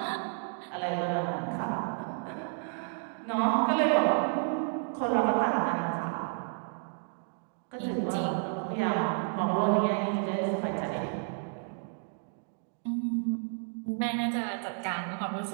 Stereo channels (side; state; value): left; silent; 57 dB below the other